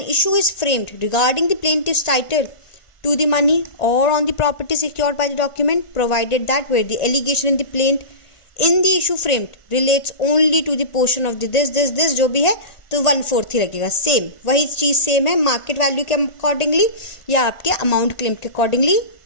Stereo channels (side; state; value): right; late; 1.4 ms